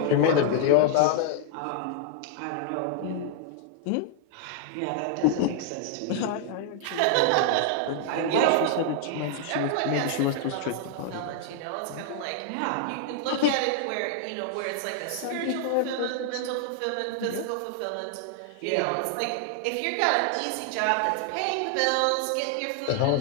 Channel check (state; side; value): different; both; correlation 0.00